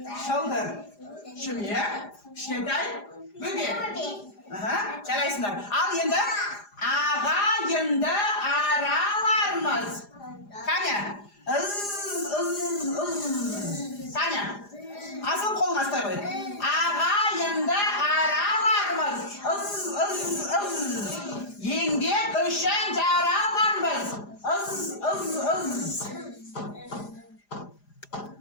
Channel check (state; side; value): late; right; 4.9 ms